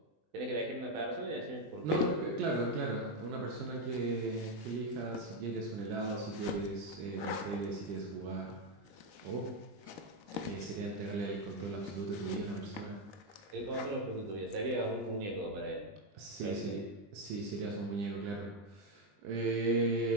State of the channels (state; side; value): late; left; 20 ms